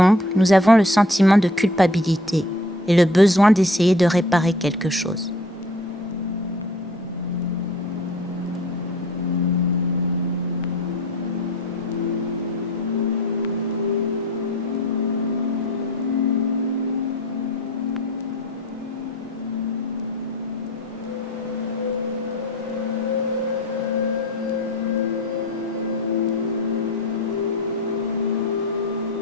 nous avons le sentiment de culpabilité et le besoin d'essayer de réparer quelque chose.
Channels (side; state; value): both; normal; correlation 0.47